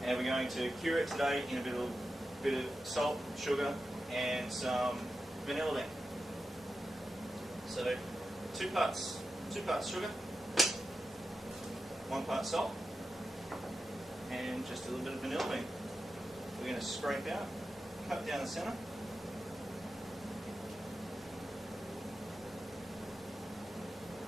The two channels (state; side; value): normal; both; correlation 0.91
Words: and we're going to cure it today in a bit of salt, sugar, and some vanilla bean. So two parts sugar, 1 part salt, and just a little bit of vanilla bean. We're going to scrape out, cut down the centre,